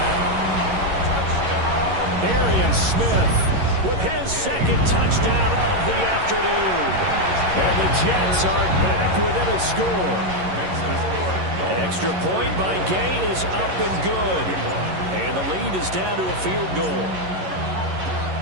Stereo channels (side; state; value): left; late; 11 ms